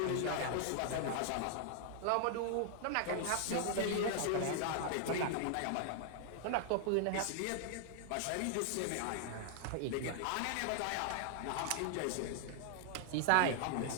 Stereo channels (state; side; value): different; both; correlation 0.00